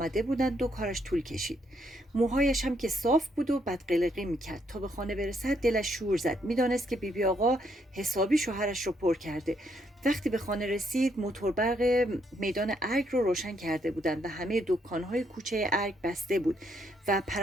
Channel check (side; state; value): both; normal; correlation 0.73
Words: بودند و کارش طول کشید. موهایش هم که صاف بود و بدقلقی میکرد. تا به خانه برسد دلش شور زد. میدانست که بیبی آقا حسابی شوهرش رو پر کرده. وقتی به خانه رسید موتور برق میدان ارگ رو روشن کرده بودند و همه دکان‌های کوچه ارگ بسته بود و